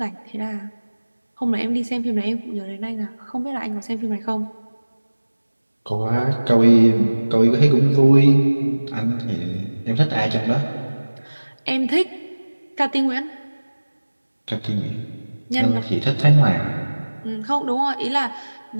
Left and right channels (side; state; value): both; inverted; correlation -1.00